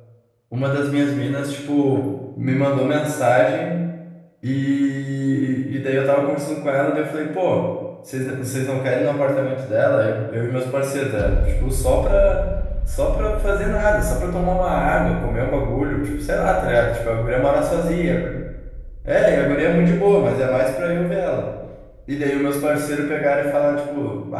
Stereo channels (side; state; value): both; identical; correlation 1.00